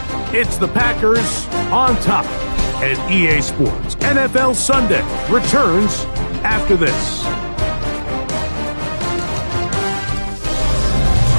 It's the Packers on top, and EA Sports NFL Sunday returns after this.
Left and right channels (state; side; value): inverted; both; correlation -1.00